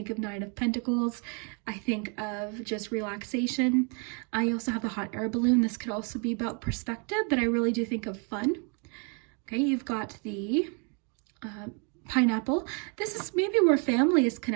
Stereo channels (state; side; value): quieter; left; 36.8 dB